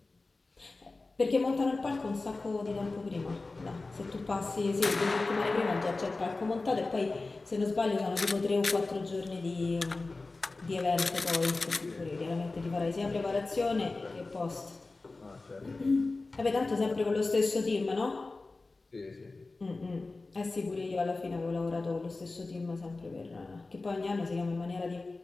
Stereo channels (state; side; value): quieter; right; 3.5 dB